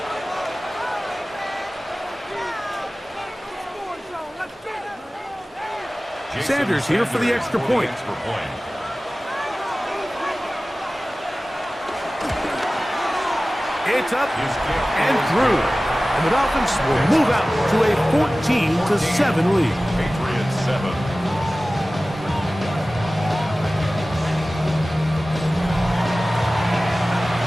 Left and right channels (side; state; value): both; normal; correlation 0.97